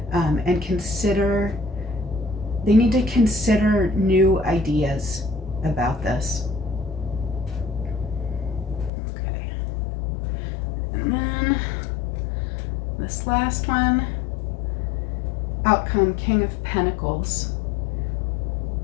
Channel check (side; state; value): right; drops out; at 8.9 s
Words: and they need to consider new ideas about this. Okay. And then this last one, outcome, King of Pentacles.